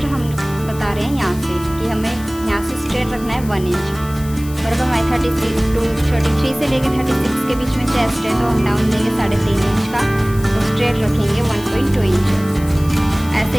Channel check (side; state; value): left; noise; hiss, 18 dB below the sound